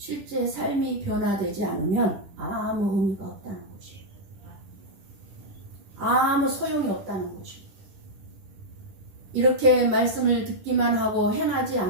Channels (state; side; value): late; left; 10 ms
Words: 삶이 변화되지 않으면 아무 의미가 없다는 것입니다. 아무 소용이 없다는 것입니다. 이렇게 말씀을 듣기만 하고 행하지